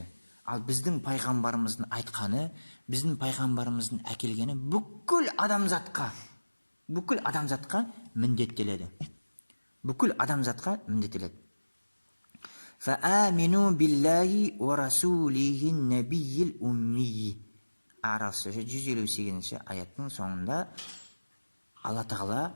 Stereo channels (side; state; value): both; inverted; correlation -1.00